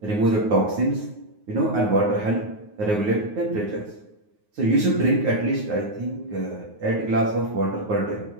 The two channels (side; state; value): left; late; 9.5 ms